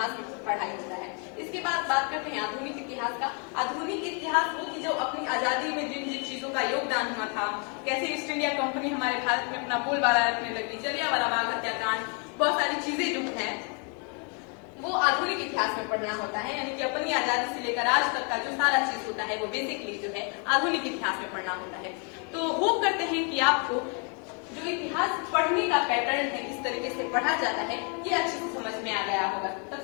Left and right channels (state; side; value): quieter; right; 36.6 dB